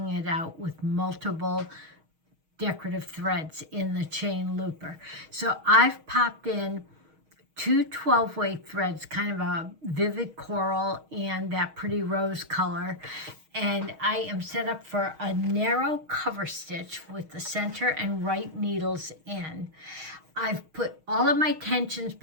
it out with multiple decorative threads in the chain looper. So I've popped in 2 12-way threads, kind of a vivid coral and that pretty rose color. And I am set up for a narrow cover stitch with the center and right needles in. I've put all of my tensions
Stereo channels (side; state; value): left; late; 6.4 ms